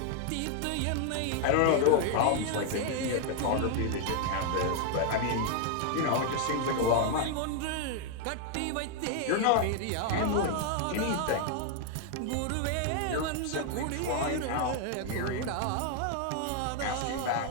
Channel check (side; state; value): both; different; correlation 0.00